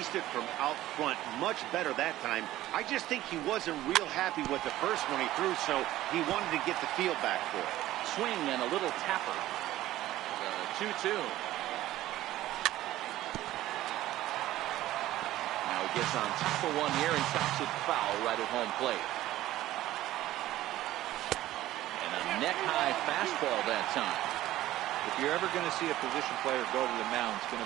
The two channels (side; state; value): left; quieter; 15.0 dB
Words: it from out front much better that time. I just think he wasn't real happy with the first one he threw, so he wanted to get the feel back for it. Swing and a little tapper. 2-2. Now he gets on top of one here and chops it foul right at home plate. neck-high fastball that time. If you're ever going to see a position player go to the mound, it's going